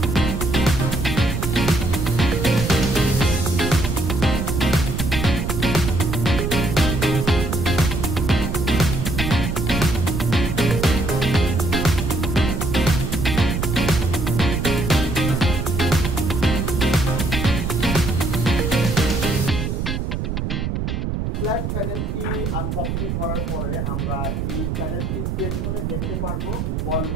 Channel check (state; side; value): noise; right; rumble, 2 dB below the sound